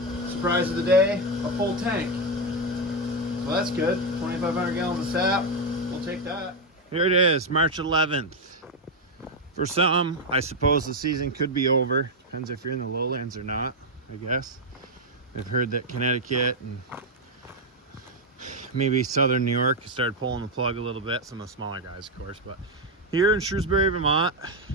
Surprise of the day, a full tank. So that's good. 2,500 gallons of sap. We'll take that. Here it is, March 11th. For some, I suppose the season could be over. Depends if you're in the lowlands or not, I guess. I've heard that Connecticut and maybe southern New York started pulling the plug a little bit. Some of the smaller guys, of course. But here in Shrewsbury, Vermont,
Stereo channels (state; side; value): normal; both; correlation 0.04